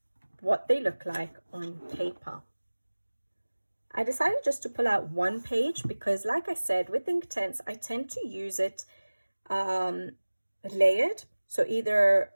what they look like on paper. I decided just to pull out one page because, like I said, with Inktense, I tend to use it layered, so either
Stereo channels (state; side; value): inverted; both; correlation -1.00